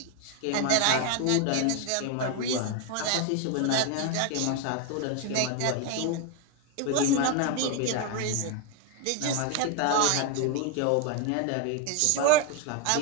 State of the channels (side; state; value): both; different; correlation 0.01